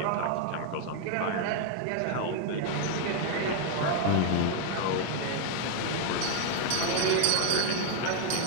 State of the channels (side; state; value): both; different; correlation 0.00